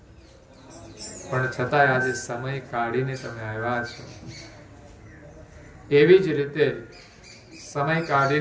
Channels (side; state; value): both; identical; correlation 1.00